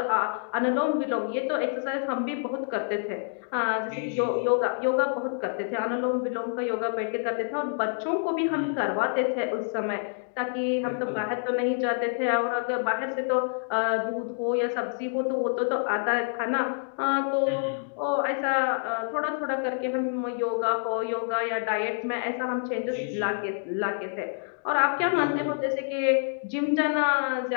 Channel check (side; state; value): right; silent; digital silence